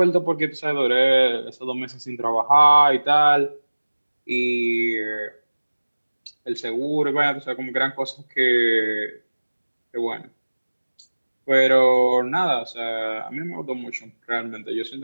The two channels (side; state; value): both; inverted; correlation -1.00